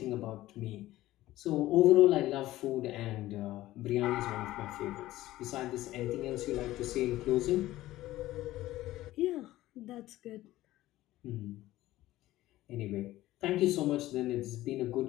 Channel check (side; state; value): right; quieter; 16.0 dB